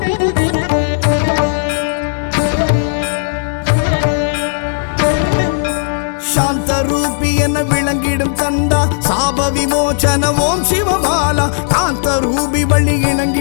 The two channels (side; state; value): right; silent; digital silence